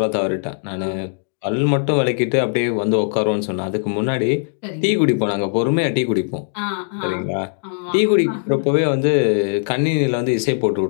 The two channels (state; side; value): silent; right; digital silence